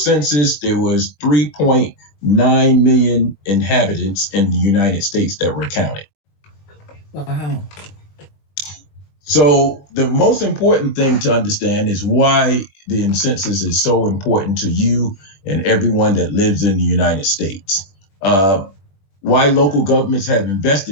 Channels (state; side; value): late; right; 21 ms